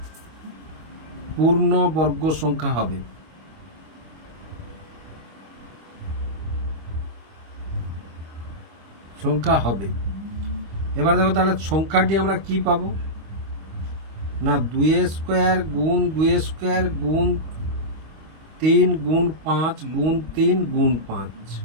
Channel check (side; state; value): left; late; 25 ms